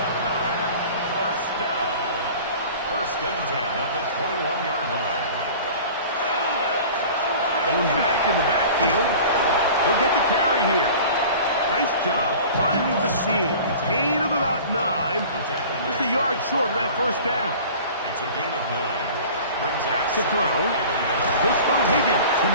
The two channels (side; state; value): both; inverted; correlation -0.41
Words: 1st down. 1st and 10 at the 21-yard line. Going back in the backfield. He'll get the carry here. Nice job finding the seam. Gain of about 9. Just a yard short of that 1st down. It's a gain of 9. Brings Back to throw. He'll spot Higgins, who